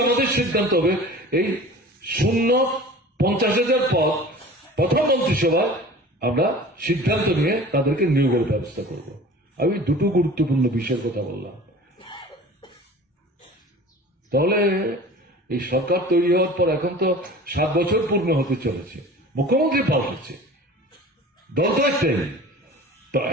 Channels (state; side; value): normal; both; correlation 0.41